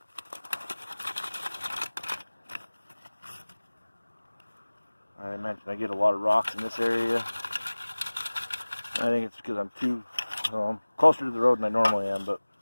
I mentioned I get a lot of rocks in this area. I think it's because I'm I'm closer to the road than I normally am, but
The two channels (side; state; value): both; inverted; correlation -1.00